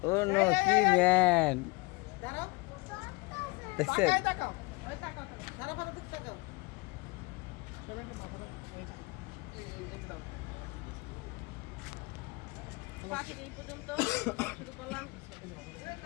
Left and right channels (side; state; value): right; quieter; 25.3 dB